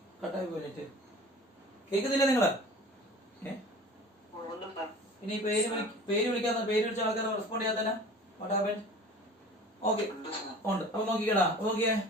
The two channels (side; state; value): both; normal; correlation 0.42